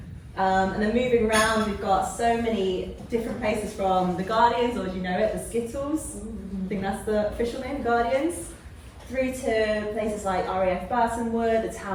And then moving around, we've got so many different places from the Guardians, or as you know it, the Skittles. I think that's the official name, Guardians. Through to places like RAF Burtonwood, the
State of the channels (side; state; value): both; identical; correlation 1.00